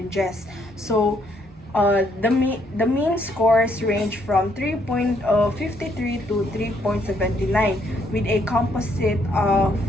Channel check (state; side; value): normal; both; correlation 0.70